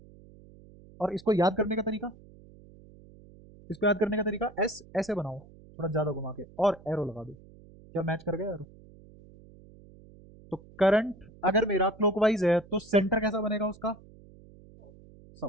और इसको याद करने का तरीका, इसको याद करने का तरीका, एस ऐसे बनाओ, थोड़ा ज्यादा घुमा के, और एरो लगा दो। क्या मैच कर गया एरो? तो करंट अगर मेरा क्लॉकवाइज है तो सेंटर कैसा बनेगा उसका?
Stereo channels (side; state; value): right; noise; hum, 23 dB below the sound